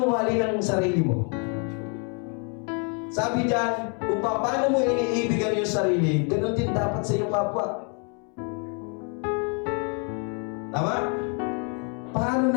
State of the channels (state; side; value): quieter; right; 38.6 dB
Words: mahalin ang sarili mo? Sabi dyan, kung paano mo iniibigan yung sarili, ganun din dapat sa iyong kapwa. Tama? Paano